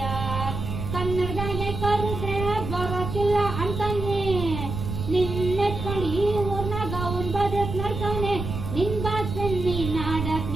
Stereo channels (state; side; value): noise; right; rumble, 5 dB below the sound